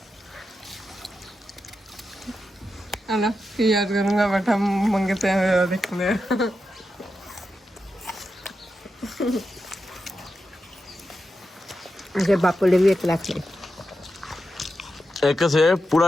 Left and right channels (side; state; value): both; normal; correlation 0.88